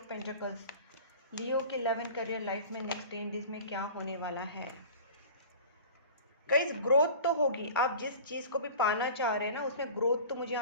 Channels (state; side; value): inverted; both; correlation -0.40